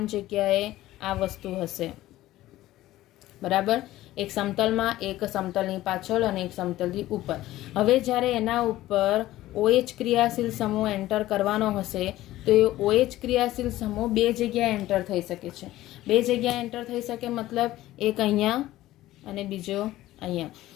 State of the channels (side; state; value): right; quieter; 15.6 dB